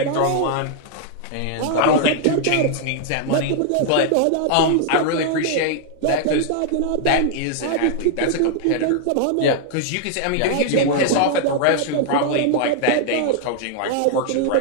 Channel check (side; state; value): both; different; correlation -0.01